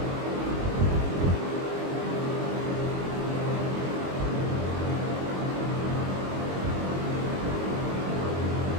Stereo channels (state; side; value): late; left; 22 ms